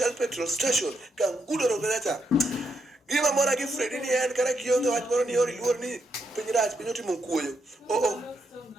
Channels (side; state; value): both; normal; correlation 0.80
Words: Petrol Station. Kangudoro kaja cha. Gima mora gi Fridi ni en kara kionge wach moro ni ori luor ni piny rach piny otimo kuoyo.